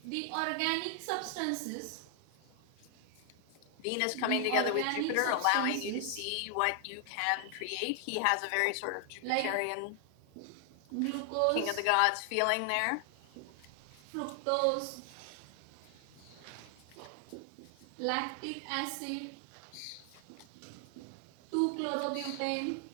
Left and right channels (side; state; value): both; different; correlation 0.00